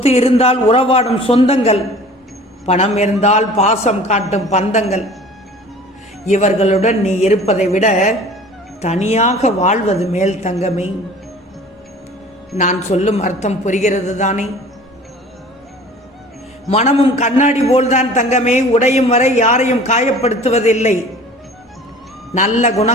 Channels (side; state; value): both; normal; correlation 0.45